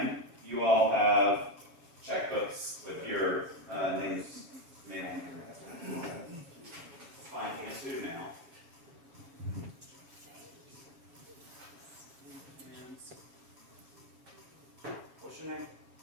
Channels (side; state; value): left; late; 7.3 ms